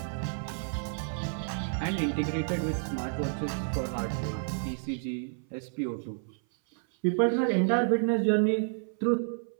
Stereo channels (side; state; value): left; silent; 58 dB below the other